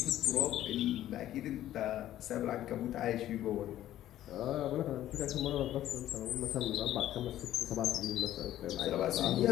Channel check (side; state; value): right; quieter; 13.0 dB